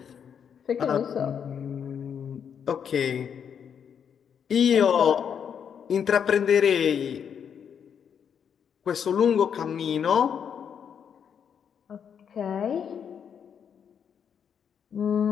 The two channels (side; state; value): right; quieter; 7.7 dB